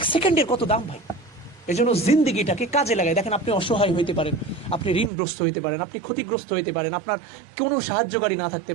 সেকেন্ডের কত দাম ভাই। এই জন্য জিন্দিগিটাকে কাজে লাগাই। দেখেন, আপনি অসহায় হইতে পারেন, আপনি ঋণগ্রস্ত হইতে পারেন, আপনি ক্ষতিগ্রস্ত হইতে পারেন, আপনার কোনো সাহায্যকারী না থাকতে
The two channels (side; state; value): left; drops out; at 5.1 s